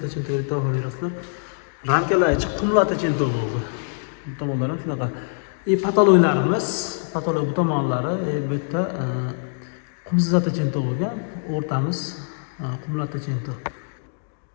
deb baho berasizlar. Ramkalar ichi qumlatachinto bo'ldi. Bu tomonlar ham shunaqa. Patoloylarimiz, patoloy bu tomonlari bu yerda qumsatachinto bo'lgan, o'rtamiz qumlatachinto.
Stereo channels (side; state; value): right; silent; digital silence